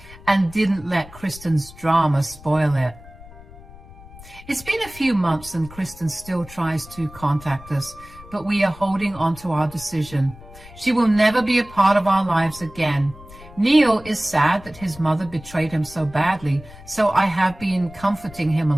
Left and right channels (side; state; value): left; noise; rumble, 19 dB below the sound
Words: and didn't let Kristen's drama spoil it. It's been a few months and Kristen still tries to contact us, but we are holding on to our decision. She will never be a part of our lives again. Neil is sad that his mother betrayed him so badly, so I have been comforting him